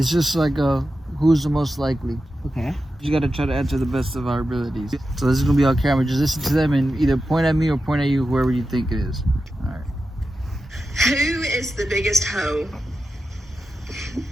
just who's the most likely. Okay. You gotta try to answer the best of our abilities. So this is gonna be on camera. Just listen to them and either point at me or point at you, whoever you think it is. Alright. Who is the biggest hoe?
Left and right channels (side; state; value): both; normal; correlation 0.91